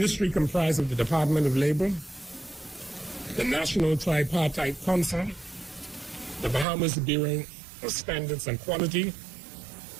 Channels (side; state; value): left; drops out; at 6.7 s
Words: comprises of the Department of Labor, the National Tripartite Council, the Bahamas Bureau of Standards and Quality,